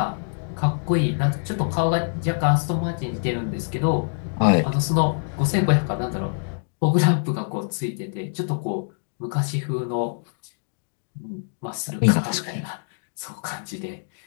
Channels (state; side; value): silent; right; digital silence